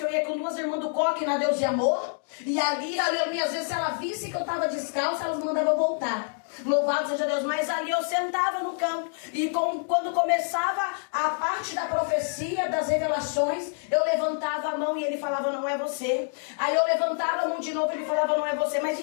eu ia com 2 irmãs do Coque na Deus e Amor. E ali, aleluia, às vezes se ela visse que eu estava descalça, elas mandavam eu voltar. Louvado seja Deus. Mas ali eu sentava no canto. E quando começava a parte da profecia, das revelações, eu levantava a mão e ele falava: não é você. Aí eu levantava a mão de novo e ele falava: não é você. Mas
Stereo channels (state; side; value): silent; right; 60 dB below the other